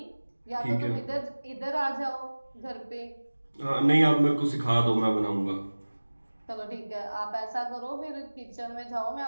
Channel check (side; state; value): both; inverted; correlation -1.00